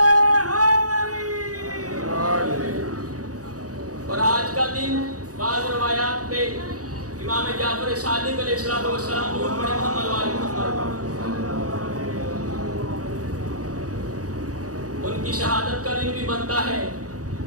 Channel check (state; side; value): late; left; 0.67 ms